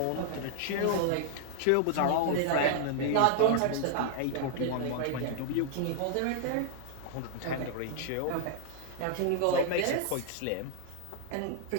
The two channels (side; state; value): both; different; correlation 0.00